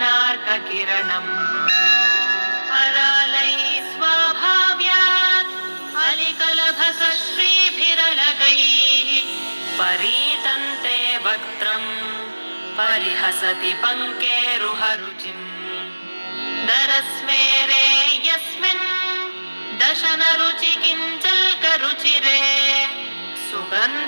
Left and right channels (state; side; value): inverted; both; correlation -1.00